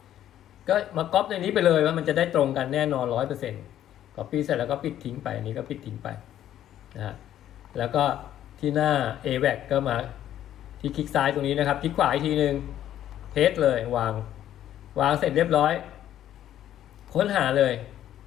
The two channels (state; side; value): quieter; right; 11.6 dB